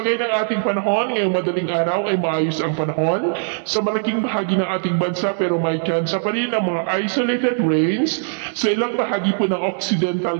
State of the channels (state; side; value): silent; left; 65 dB below the other